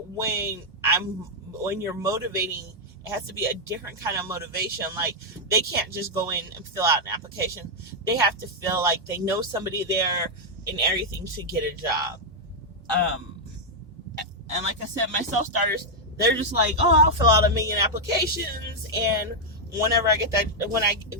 you're motivating, it has to be a different kind of motivation. Like, they can't just go in and fill out an application. They have to feel like they know somebody there and everything to get a job. And like I said, my self-starters, they're just like, oh, I'll fill out 1,000,000 applications, and whenever I get that,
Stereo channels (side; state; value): both; normal; correlation -0.03